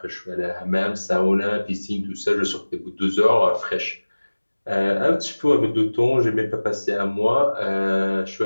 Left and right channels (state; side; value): inverted; both; correlation -1.00